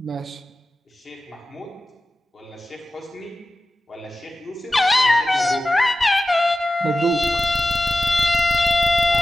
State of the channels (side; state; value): both; normal; correlation 0.94